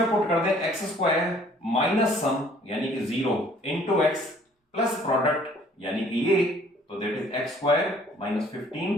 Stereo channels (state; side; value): normal; both; correlation 0.57